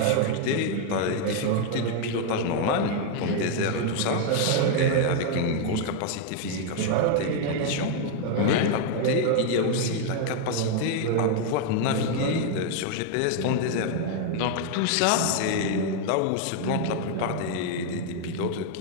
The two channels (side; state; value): both; different; correlation 0.00